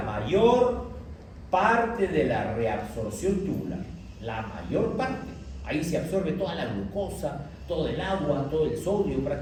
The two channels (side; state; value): both; identical; correlation 1.00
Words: mayor parte de la reabsorción tubular. La mayor parte. Ahí se absorbe toda la glucosa, todo el agua, todo el sodio